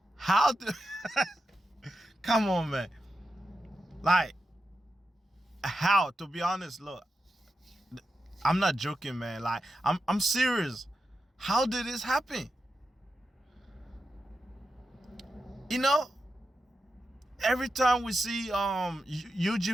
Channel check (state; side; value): normal; both; correlation 0.89